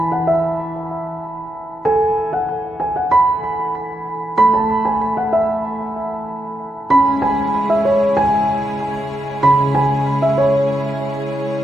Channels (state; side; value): normal; both; correlation 0.84